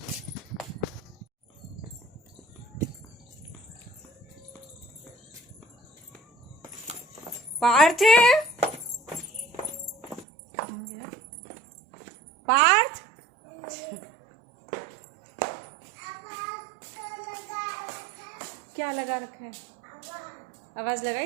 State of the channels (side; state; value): left; drops out; at 10.2 s